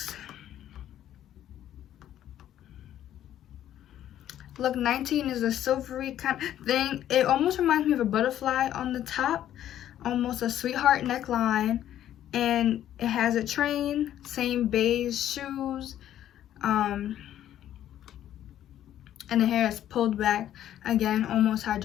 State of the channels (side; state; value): right; quieter; 11.6 dB